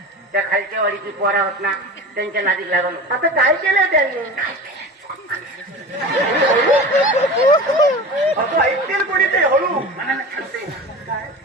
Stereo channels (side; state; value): both; normal; correlation 0.33